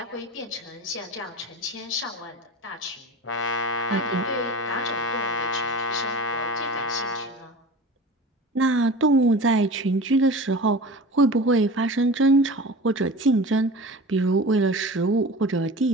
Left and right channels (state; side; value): normal; both; correlation 0.36